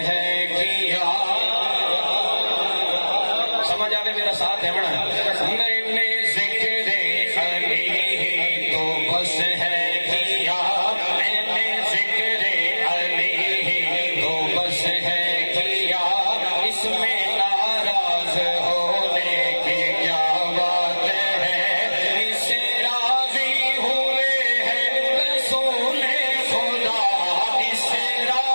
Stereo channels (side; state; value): both; inverted; correlation -1.00